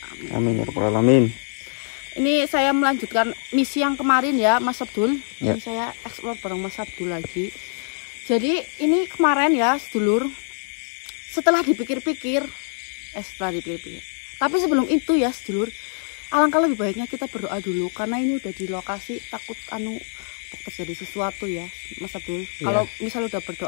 Amin ya rabbal alamin. Ini saya melanjutkan misi yang kemarin ya, Mas Abdul. Ya. Ini saya explore bareng Mas Abdul lagi. Jadi ini kemarin ya, sedulur. Setelah dipikir-pikir, tapi sebelum itu ya, sedulur, alangkah lebih baiknya kita berdoa dulu karena ini udah di lokasi takut terjadi sesuatu ya, Mas Abdul. Ya. Kalau misal udah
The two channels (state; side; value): silent; right; 57 dB below the other